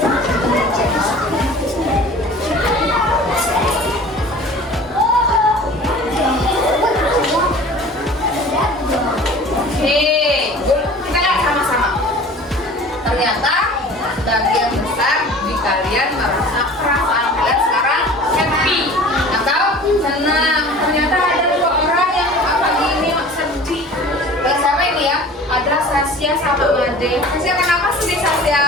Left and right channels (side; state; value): both; normal; correlation 0.43